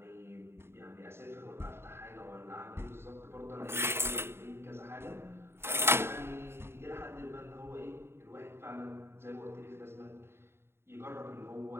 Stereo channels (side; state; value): left; late; 0.12 ms